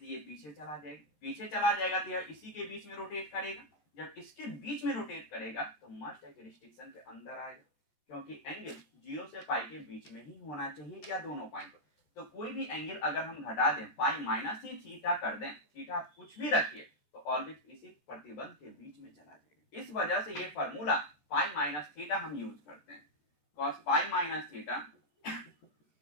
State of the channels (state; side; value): late; right; 13 ms